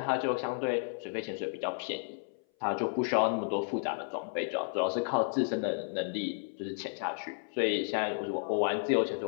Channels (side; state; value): right; silent; 56 dB below the other